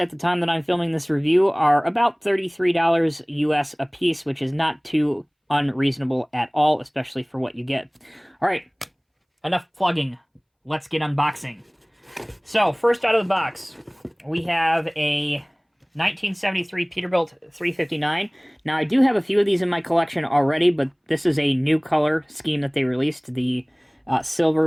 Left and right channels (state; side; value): identical; both; correlation 1.00